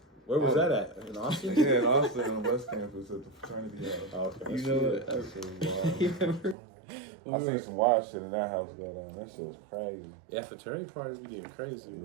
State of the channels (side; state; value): left; drops out; at 6.6 s